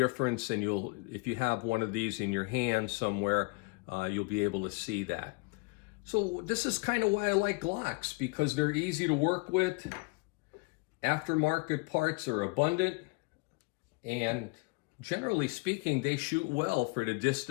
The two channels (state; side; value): quieter; right; 28.6 dB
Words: and if you have one of these in your hand somewhere, you'll be able to see that. So this is kind of why I like Glocks, because they're easy to work with. Aftermarket parts are abundant, and generally speaking, they shoot well for the